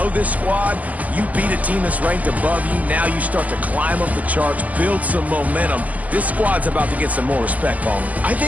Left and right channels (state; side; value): late; left; 0.077 ms